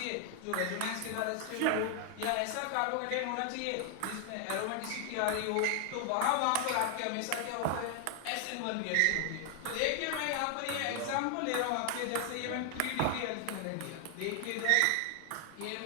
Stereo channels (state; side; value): different; both; correlation 0.00